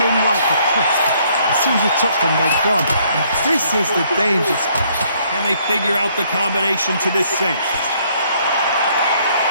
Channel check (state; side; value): inverted; both; correlation -0.66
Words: like a cliff. As soon as you touch them, they're gone. And this is the danger spot. Can they figure out the combination to this safe?